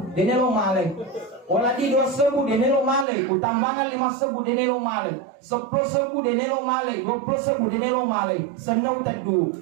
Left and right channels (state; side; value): drops out; left; at 3.1 s